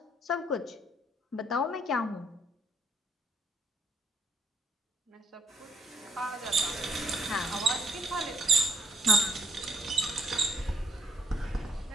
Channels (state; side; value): normal; both; correlation 0.70